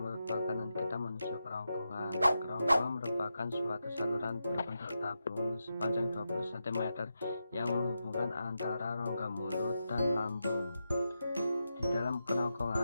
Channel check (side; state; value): both; inverted; correlation -0.88